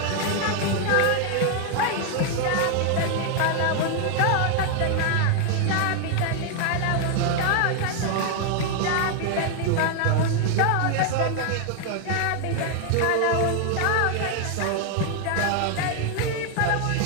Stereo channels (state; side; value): different; both; correlation 0.00